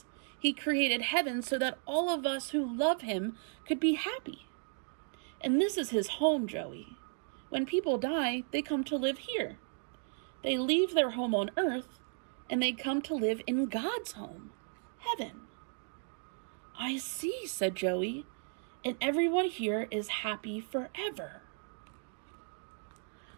He created heaven so that all of us who love him could be happy. And this is his home, Joey. When people die, they come to live here. They leave their home on earth, and they come to live in God's home, heaven. I see, said Joey, and everyone here is happy forever.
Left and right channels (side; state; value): left; silent; 54 dB below the other